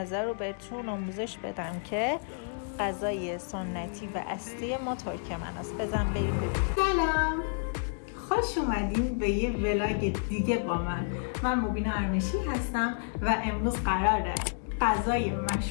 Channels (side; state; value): right; silent; digital silence